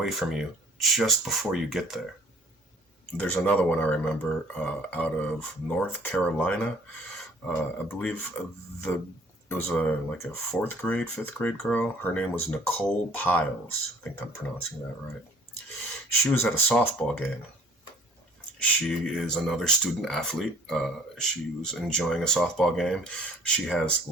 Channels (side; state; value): both; normal; correlation 0.53